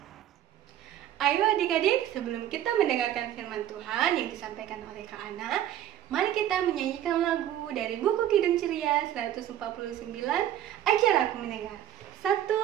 Ayo adik-adik, sebelum kita mendengarkan firman Tuhan yang disampaikan oleh Kak Ana, mari kita menyanyikan lagu dari buku Kidung Ceria 149, Ajar Aku Mendengar. 1,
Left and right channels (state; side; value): quieter; left; 11.7 dB